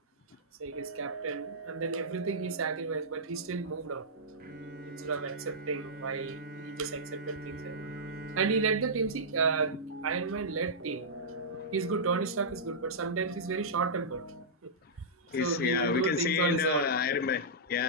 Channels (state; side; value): normal; both; correlation -0.12